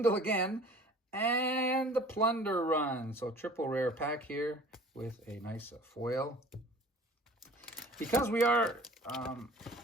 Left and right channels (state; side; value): normal; both; correlation 0.47